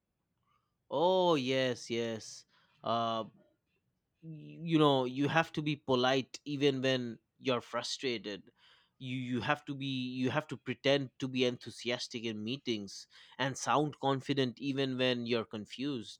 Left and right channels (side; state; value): both; identical; correlation 1.00